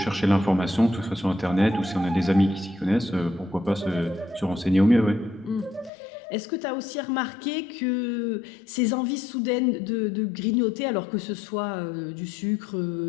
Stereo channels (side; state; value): right; drops out; at 5.9 s